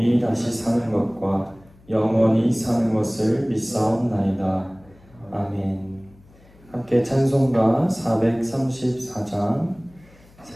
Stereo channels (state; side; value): noise; left; hum, 27 dB below the sound